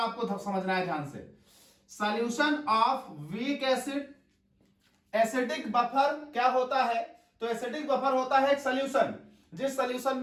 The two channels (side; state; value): both; identical; correlation 1.00